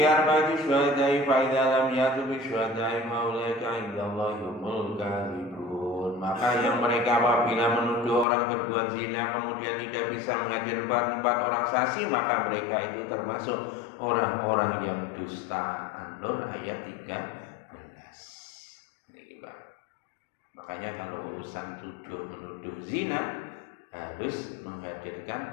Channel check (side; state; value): right; drops out; at 8.2 s